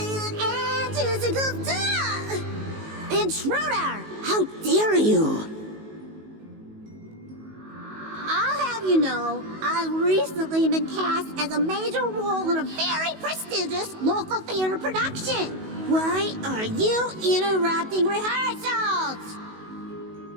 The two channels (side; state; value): left; late; 19 ms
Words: and juicicles do. Intruder, how dare you? I'll have you know, I've recently been cast as a major role in a very prestigious local theater production. Why are you interrupting rehearsals?